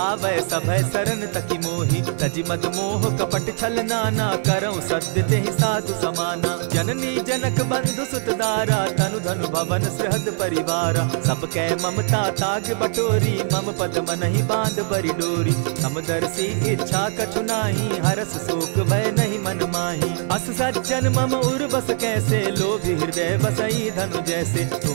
सभय सरन तकि मोहि। तजि मद मोह कपट छल नाना, करऊं सत्य तेहि साधु समाना। जननी जनक बंधु सुत दारा, तनु धनु भवन सृहद परिवारा। सब कै ममता ताग बटोरी, मम पद मनहि बांध बरि डोरी। समदर्शी इच्छा कछु नाही, हरस शोक भय नहीं मन माही। अस सज्जन मम उर बस कैसे, लोभी हृदय बसई धनु जैसे।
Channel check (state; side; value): silent; left; digital silence